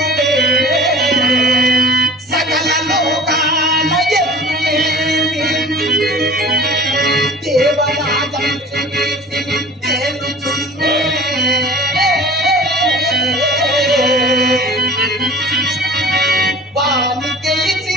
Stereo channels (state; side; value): normal; both; correlation 0.43